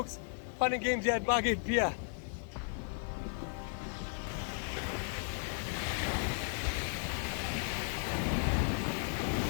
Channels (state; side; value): silent; right; 54 dB below the other